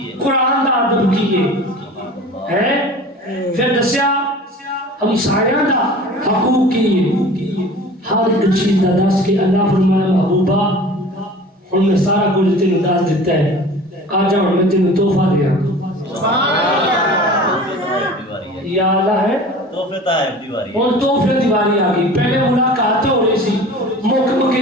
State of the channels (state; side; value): normal; both; correlation 0.41